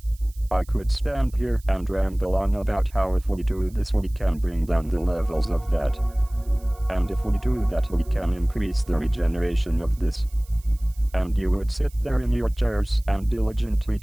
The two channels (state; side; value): noise; right; hiss, 26 dB below the sound